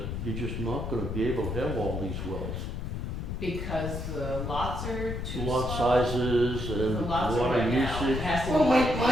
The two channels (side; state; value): left; noise; rumble, 4 dB below the sound